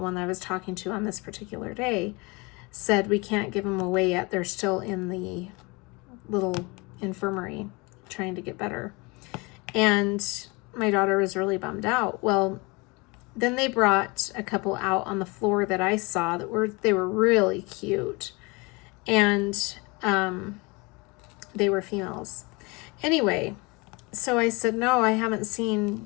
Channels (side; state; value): right; quieter; 26.9 dB